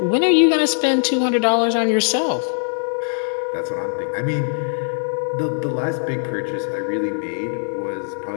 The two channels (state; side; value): silent; right; digital silence